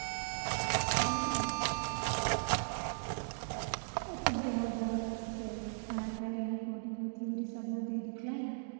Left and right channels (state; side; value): silent; left; digital silence